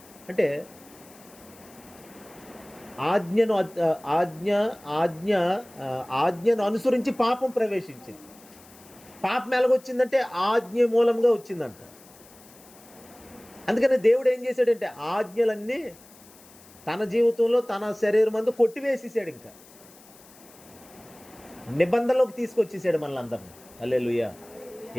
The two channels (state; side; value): noise; left; hiss, 24 dB below the sound